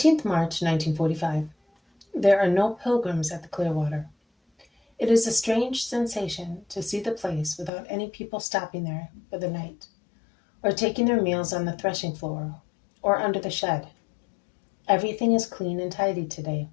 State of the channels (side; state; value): right; drops out; at 7.7 s